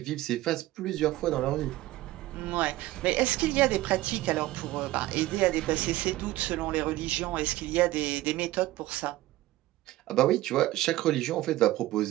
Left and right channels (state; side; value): quieter; left; 16.8 dB